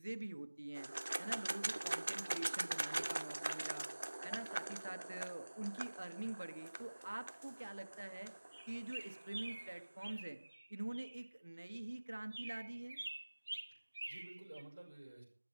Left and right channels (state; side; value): inverted; both; correlation -1.00